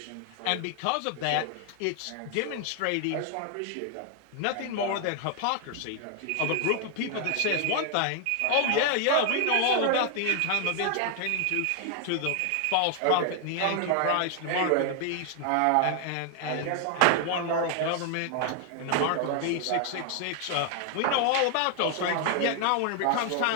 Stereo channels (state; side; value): different; both; correlation 0.00